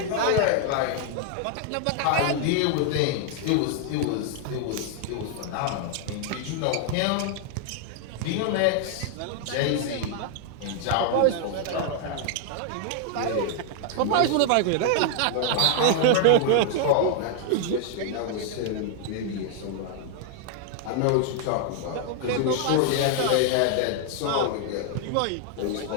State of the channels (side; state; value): both; different; correlation 0.00